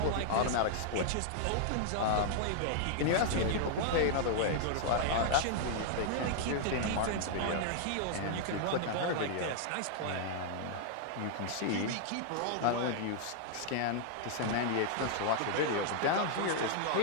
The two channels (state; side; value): different; both; correlation -0.01